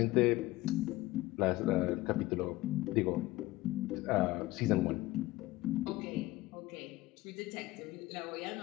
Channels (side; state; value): right; quieter; 18.5 dB